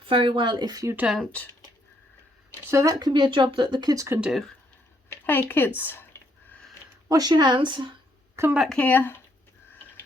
very well if you don't. So that can be a job that the kids can do. Hey kids, wash your hands, come back here.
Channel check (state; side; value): normal; both; correlation 0.72